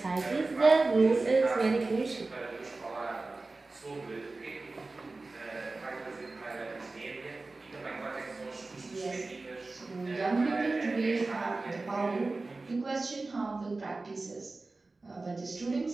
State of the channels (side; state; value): left; quieter; 3.4 dB